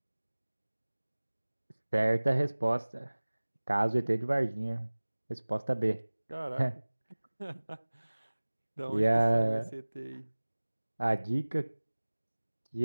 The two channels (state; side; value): inverted; both; correlation -1.00